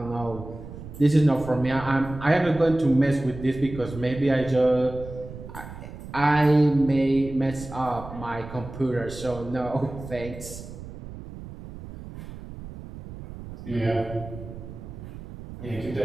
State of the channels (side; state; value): right; noise; rumble, 13 dB below the sound